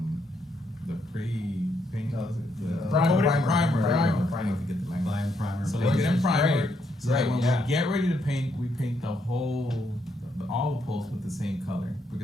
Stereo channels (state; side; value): normal; both; correlation 0.76